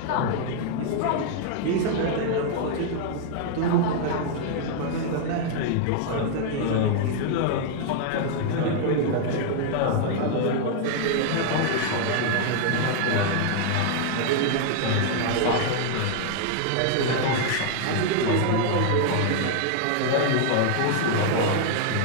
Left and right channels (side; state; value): both; different; correlation 0.00